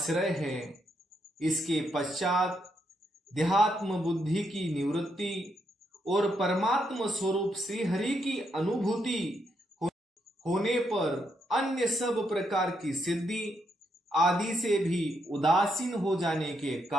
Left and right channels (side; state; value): both; normal; correlation 0.79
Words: है। इसके पश्चात देहात्म बुद्धि की निवृत्ति और परमात्म स्वरूप श्री हरि की अनुभूति होने पर अन्य सब प्रकार की सिद्धि आदि से भी उदासीन हो जाने के